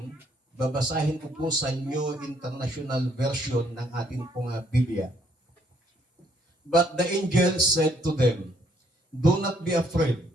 babasahin ko po sa New International Version ng ating pong Biblia. But the angel said to them, "Do not be afraid.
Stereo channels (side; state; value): both; normal; correlation 0.68